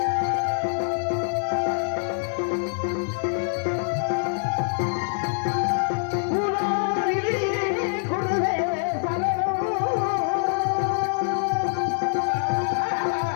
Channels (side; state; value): right; silent; 62 dB below the other